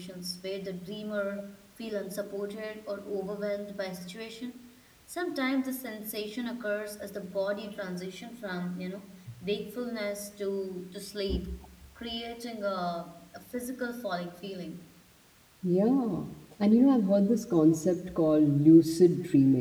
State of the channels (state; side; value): identical; both; correlation 1.00